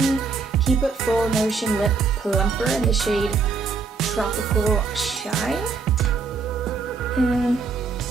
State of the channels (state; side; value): quieter; left; 4.9 dB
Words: Keep It Full Nourishing Lip Plumper in the shade Tropical Shine. And